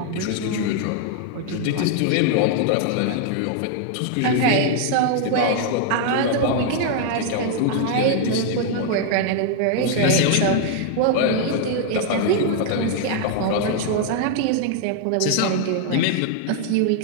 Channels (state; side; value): different; both; correlation 0.00